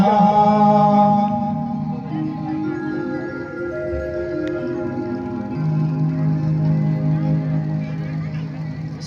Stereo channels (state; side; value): identical; both; correlation 1.00